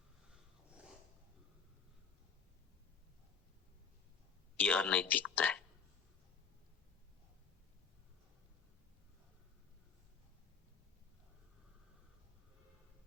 ये अनैतिकता है।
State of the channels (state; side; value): quieter; right; 6.3 dB